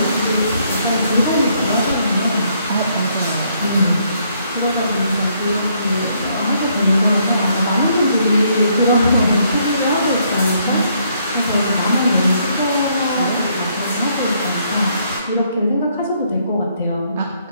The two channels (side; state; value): both; inverted; correlation -0.70